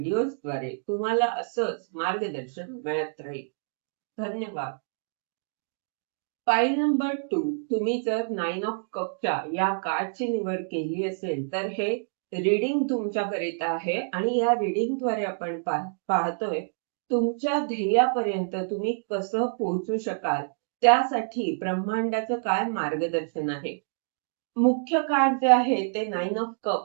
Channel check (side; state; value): left; silent; digital silence